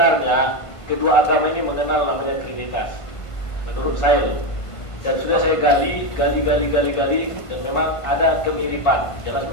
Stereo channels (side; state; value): right; late; 1.5 ms